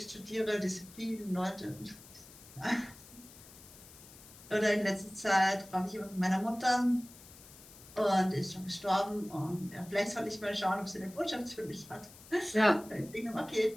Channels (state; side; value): noise; left; hiss, 20 dB below the sound